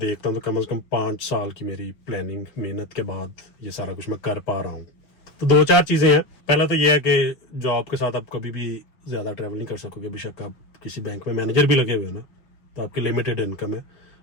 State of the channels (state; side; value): late; right; 6.3 ms